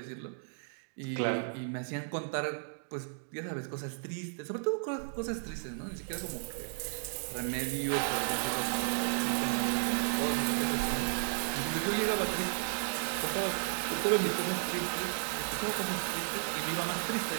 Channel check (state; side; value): silent; left; digital silence